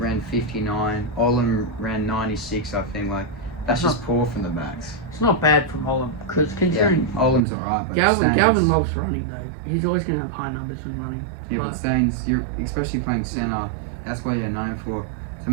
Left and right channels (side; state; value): left; drops out; at 7.5 s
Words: 59. Olin ran 96. I think. Like, that's That's just poor from the backs. It's not bad from Holland, because Yeah, considering Olim's alright, but Galvin Staines, loves running though. He's always going to have high numbers when running. Yeah, but Staines, you're especially playing centre. That's what you're known for, to